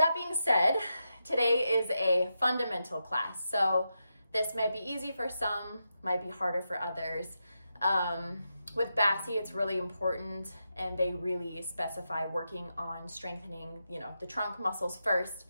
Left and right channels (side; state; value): both; inverted; correlation -0.87